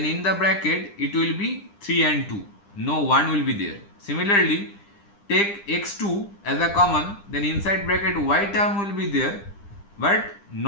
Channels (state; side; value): late; right; 9.9 ms